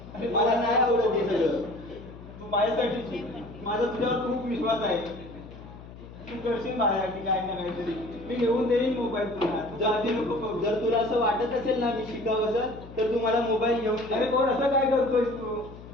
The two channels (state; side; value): noise; left; hum, 16 dB below the sound